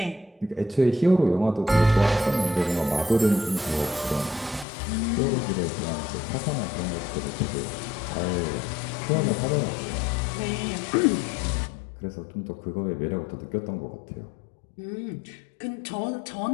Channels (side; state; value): right; drops out; at 4.7 s